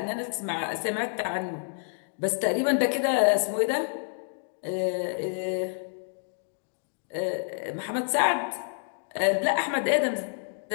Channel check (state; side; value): silent; right; digital silence